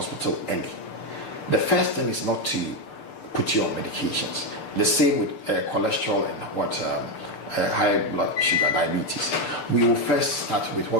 early, the first thing is not to put you on medications. The same with cholesterol and high blood sugar, diabetes. We will first start with what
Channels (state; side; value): late; right; 6.7 ms